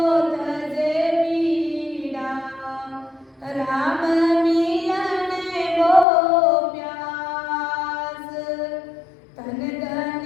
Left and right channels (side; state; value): right; drops out; at 6.1 s